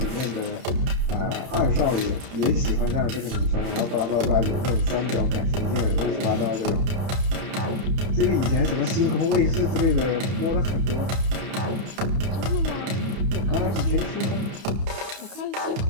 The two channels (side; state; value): left; late; 31 ms